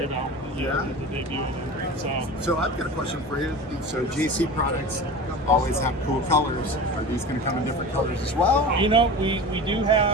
about the debut. So I've got a question for you. So JayCee products always have cool colors. Are these going to come in different colors as well? We do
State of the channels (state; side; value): normal; both; correlation 0.33